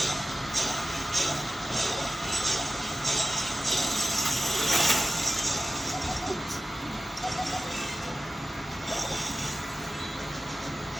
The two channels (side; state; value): both; normal; correlation 0.95